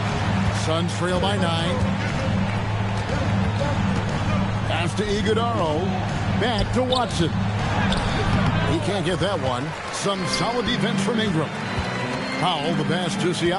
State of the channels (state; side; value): identical; both; correlation 1.00